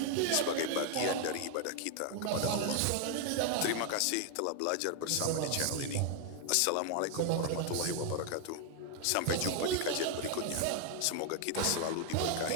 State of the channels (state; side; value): different; both; correlation 0.00